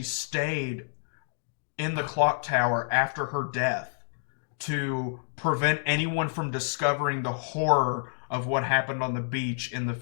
stayed in the clock tower after her death to prevent anyone from discovering the horror of what happened on the beach in the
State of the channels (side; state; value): right; silent; digital silence